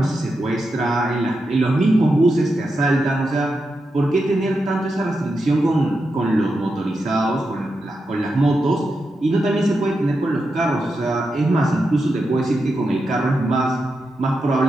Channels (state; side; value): normal; both; correlation 0.87